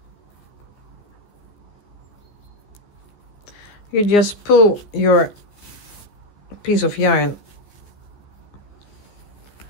you just pull your piece of yarn,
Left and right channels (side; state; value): right; late; 14 ms